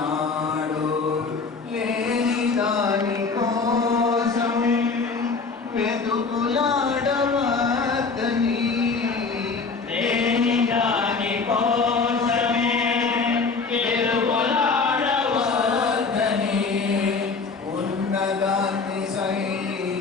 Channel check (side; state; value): right; quieter; 4.6 dB